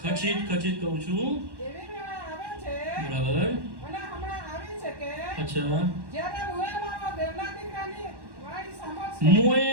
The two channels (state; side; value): late; left; 1.1 ms